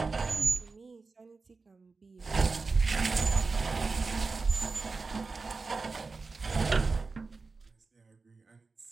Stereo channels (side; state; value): left; quieter; 4.1 dB